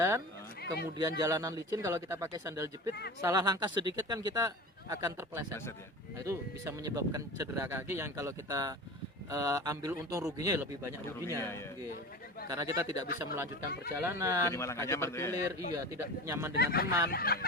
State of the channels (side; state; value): both; normal; correlation 0.31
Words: kemudian jalanan licin, kalau kita pakai sandal jepit, salah langkah sedikit kan kita akan terpeleset. Nah, itu bisa menyebabkan cedera kaki yang kalau kita ambil untung ruginya lebih banyak ruginya. Karena kita tidak bisa melanjutkan perjalanan, kaki terkilir, tidak nyaman dengan teman.